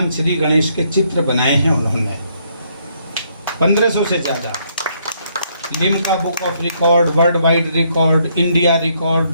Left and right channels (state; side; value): inverted; both; correlation -0.71